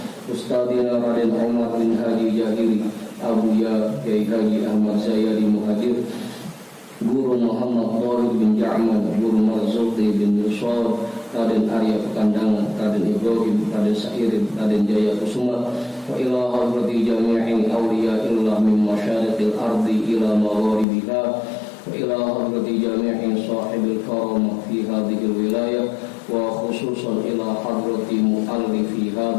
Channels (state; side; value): drops out; right; at 20.9 s